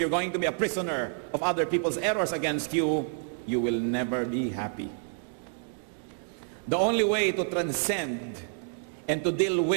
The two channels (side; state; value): left; silent; digital silence